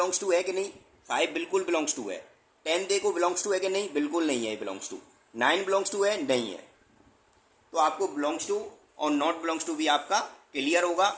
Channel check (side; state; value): both; identical; correlation 1.00